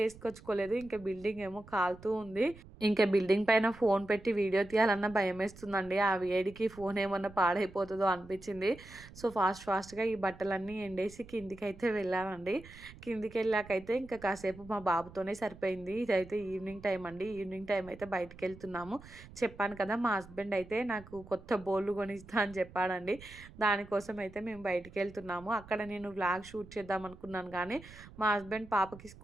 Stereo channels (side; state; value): right; noise; rumble, 19 dB below the sound